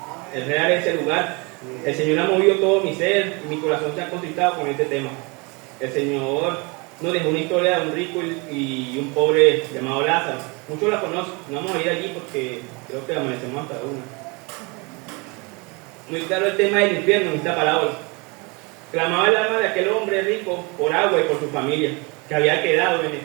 Es real ese lugar. El Señor ha movido todo mi ser y mi corazón se ha contristado con este tema. El Señor nos dejó una historia de un rico y un pobre llamado Lázaro. Muchos la conocen. No vamos a ir allí porque creo que amanecemos hasta una. Muy claro el tema del infierno en esta parábola. Clamaba el alma de aquel hombre rico por agua y por su familia, que había quedado en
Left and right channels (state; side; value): quieter; left; 29.0 dB